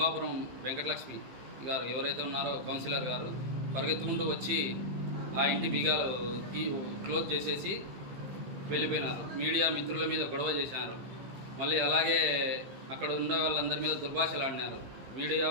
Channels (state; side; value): late; left; 15 ms